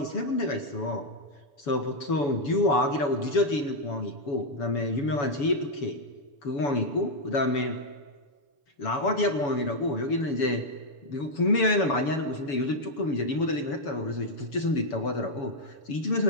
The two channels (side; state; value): right; late; 7.1 ms